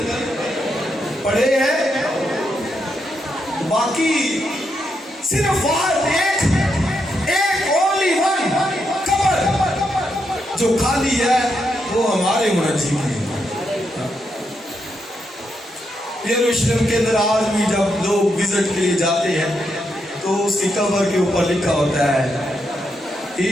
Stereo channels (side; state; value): both; normal; correlation 0.81